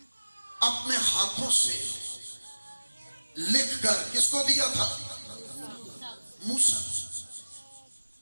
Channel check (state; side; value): inverted; both; correlation -1.00